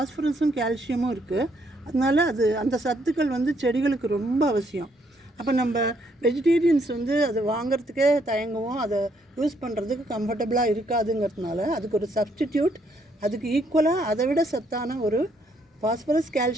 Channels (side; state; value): both; normal; correlation 0.71